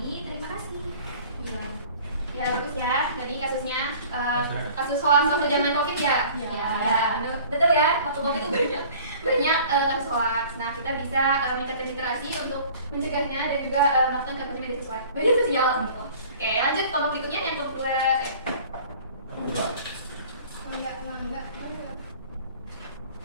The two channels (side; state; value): both; inverted; correlation -0.48